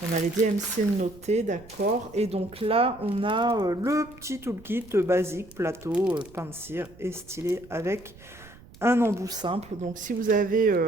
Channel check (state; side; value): noise; right; rumble, 22 dB below the sound